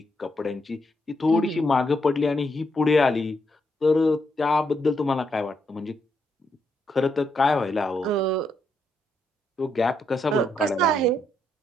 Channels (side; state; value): both; normal; correlation 0.78